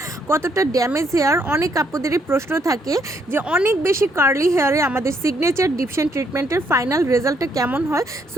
কতটা ড্যামেজ হেয়ার। অনেক আপুদেরই প্রশ্ন থাকে যে অনেক বেশি কার্লি হেয়ারে আমাদের সিগনেচার ডিপশন ট্রিটমেন্টের ফাইনাল রেজাল্টটা কেমন হয়।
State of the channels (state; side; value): normal; both; correlation 0.72